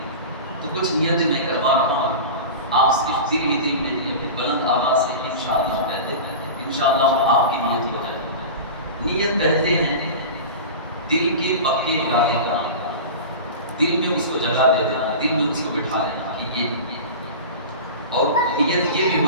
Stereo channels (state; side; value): inverted; both; correlation -0.31